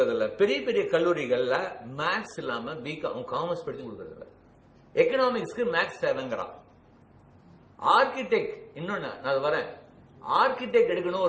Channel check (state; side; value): identical; both; correlation 1.00